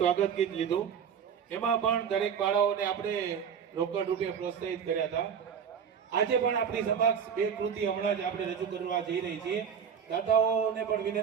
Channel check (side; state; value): left; quieter; 7.4 dB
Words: ગીત લીધું. એમાં પણ દરેક બાળાઓને આપણે રોકડ રૂપે પ્રોત્સાહિત કર્યા હતા. આજે પણ આપણી સમક્ષ બે કૃતિ હમણાં જ આપણે રજૂ કરવા જઈ રહી છીએ. દાદાઓને પણ